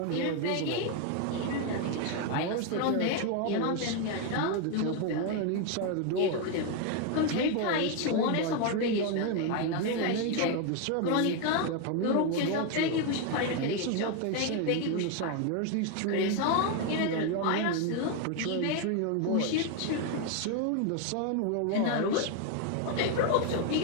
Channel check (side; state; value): both; different; correlation 0.01